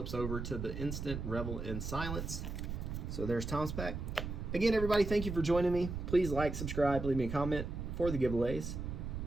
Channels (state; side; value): noise; right; rumble, 5 dB below the sound